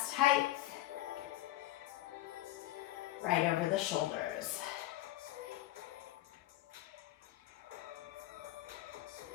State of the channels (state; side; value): quieter; right; 15.6 dB